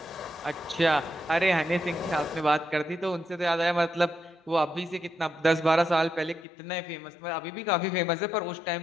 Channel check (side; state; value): right; drops out; at 6.5 s